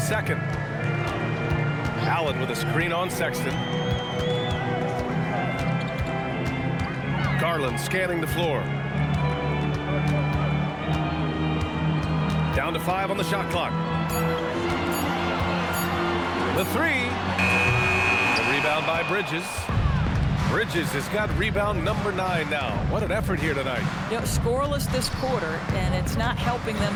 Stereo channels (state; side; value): identical; both; correlation 1.00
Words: second. Allen with a screen on Sexton. Garland scanning the floor. Down to 5 on the shot clock. The 3. The rebound by Bridges. Bridges has got rebound number 9 now. What an effort here tonight. You know, scoreless this quarter, and it's not helping them